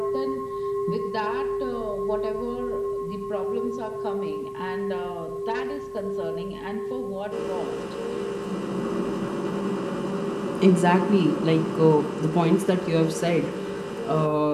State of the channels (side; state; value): both; identical; correlation 1.00